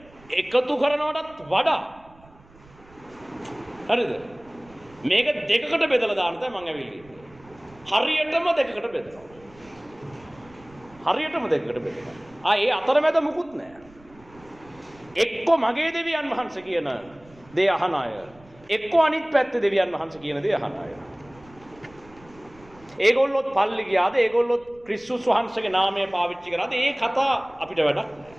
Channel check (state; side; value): noise; right; rumble, 25 dB below the sound